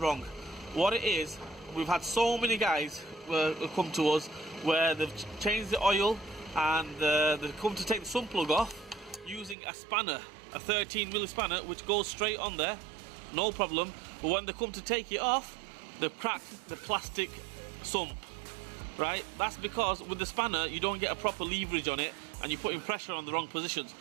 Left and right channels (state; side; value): drops out; left; at 9.6 s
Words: What it is, we've had so many guys come to us where they've changed the oil and they've come to take the sump plug off using a spanner, a 13mm spanner, which goes straight on there, no problem. But when they come to take it off, they've cracked the plastic sump. Right, that's because with the spanner you don't get a proper leverage on it and you're putting pressure on the wrong positions.